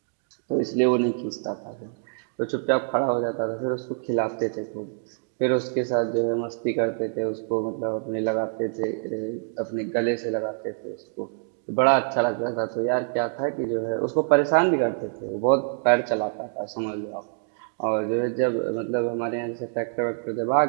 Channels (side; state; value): left; silent; digital silence